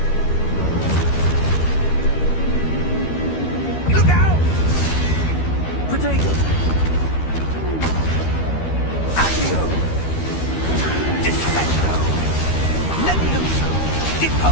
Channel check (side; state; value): right; late; 13 ms